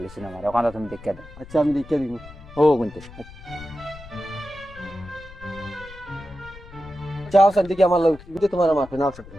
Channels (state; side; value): noise; left; rumble, 18 dB below the sound